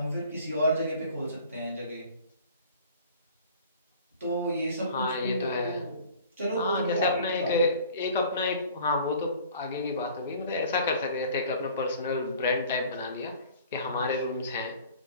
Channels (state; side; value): inverted; both; correlation -0.48